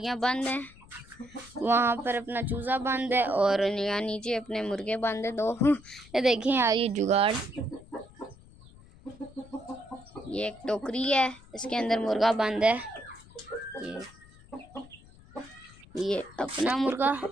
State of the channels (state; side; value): noise; left; rumble, 23 dB below the sound